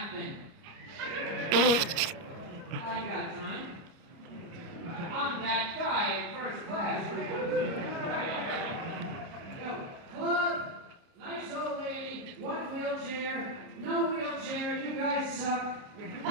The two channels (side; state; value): left; late; 30 ms